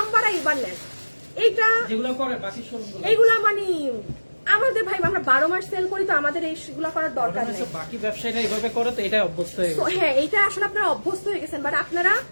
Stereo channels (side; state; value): both; inverted; correlation -1.00